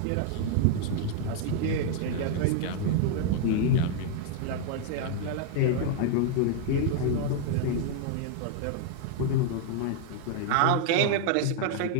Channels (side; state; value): both; different; correlation 0.00